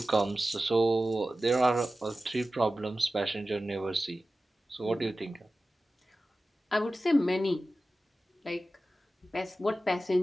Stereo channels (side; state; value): both; normal; correlation 0.95